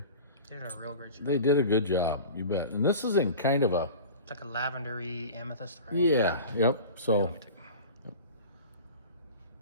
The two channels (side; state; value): both; inverted; correlation -0.37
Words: They did a real great job. They did a good job, you bet. And this is in kind of a... It's like a lavendery amethyst. Right? Yeah, yep. So... Let me take...